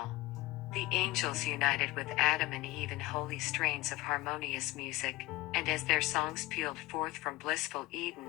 The angels united with Adam and Eve in holy strains of harmonious music, and as their songs pealed forth from blissful Eden,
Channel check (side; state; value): right; quieter; 19.7 dB